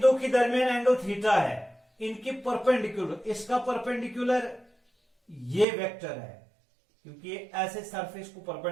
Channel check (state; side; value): drops out; left; at 5.7 s